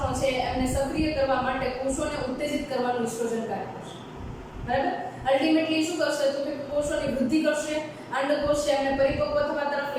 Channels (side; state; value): both; identical; correlation 1.00